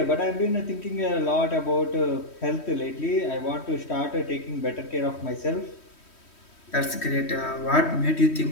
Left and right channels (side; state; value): right; late; 3.1 ms